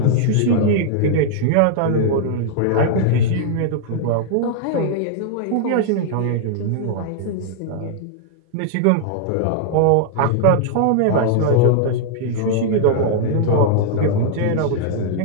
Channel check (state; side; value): different; both; correlation -0.01